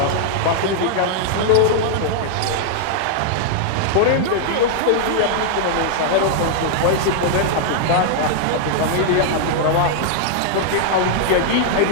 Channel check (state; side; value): different; both; correlation -0.01